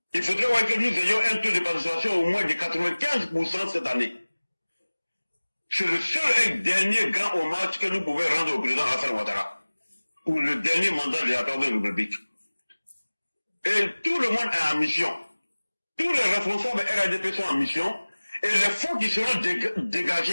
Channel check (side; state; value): both; inverted; correlation -1.00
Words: Il faudrait voir que nous ayons un taux de participation au moins de 95% cette année. C'est le seul et dernier grand hommage que nous pouvons rendre au président Alassane Ouattara pour le dernier mandat de la Troisième République. Et tout le monde est en mission. Tous les responsables RADP sont en mission et les fonds qui seront